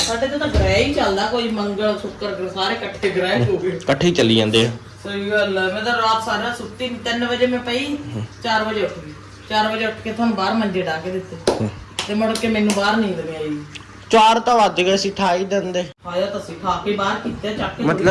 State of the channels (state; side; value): identical; both; correlation 1.00